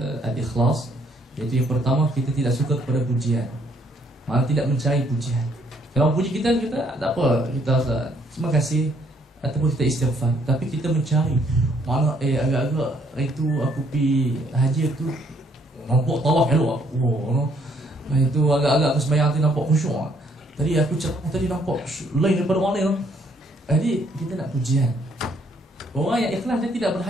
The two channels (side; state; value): both; normal; correlation 0.67